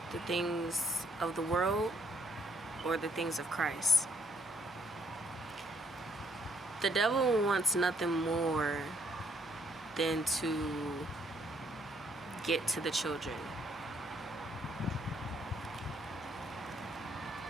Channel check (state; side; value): normal; both; correlation 0.68